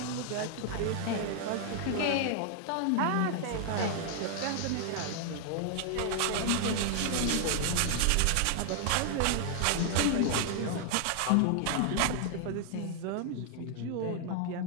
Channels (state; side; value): different; both; correlation 0.00